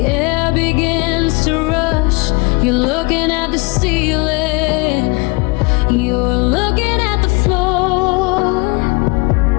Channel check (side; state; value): right; quieter; 27.4 dB